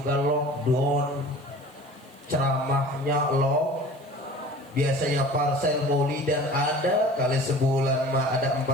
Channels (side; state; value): right; noise; hiss, 30 dB below the sound